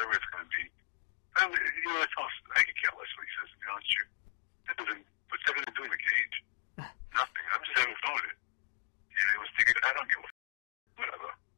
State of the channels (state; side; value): silent; right; digital silence